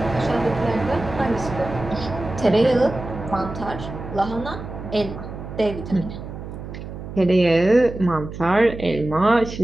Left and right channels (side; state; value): right; noise; hum, 10 dB below the sound